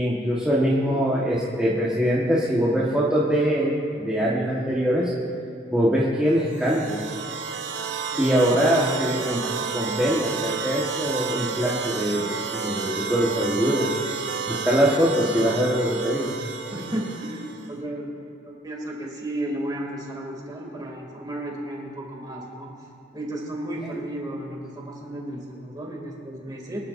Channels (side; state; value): both; normal; correlation 0.63